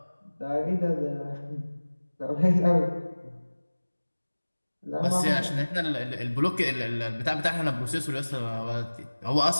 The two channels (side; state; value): both; inverted; correlation -1.00